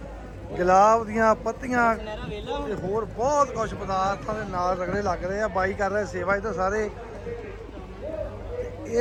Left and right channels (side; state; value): both; identical; correlation 1.00